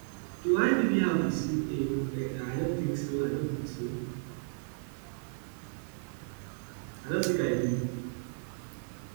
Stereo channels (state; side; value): silent; left; 55 dB below the other